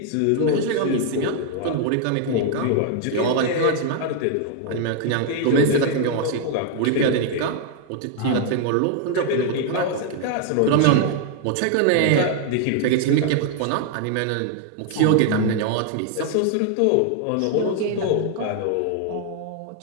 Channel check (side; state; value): both; different; correlation 0.00